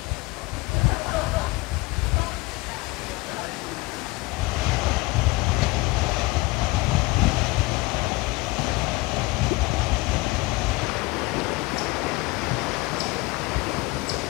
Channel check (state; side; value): quieter; right; 22.6 dB